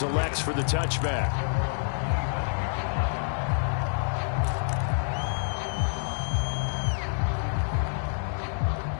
elects for the touchback.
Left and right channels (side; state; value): right; silent; digital silence